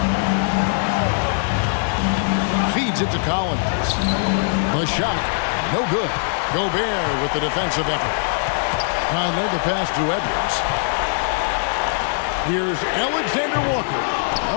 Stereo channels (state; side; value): silent; right; digital silence